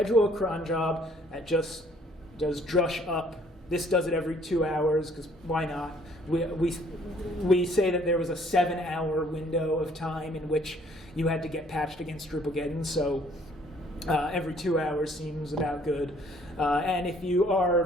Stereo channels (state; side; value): normal; both; correlation 0.61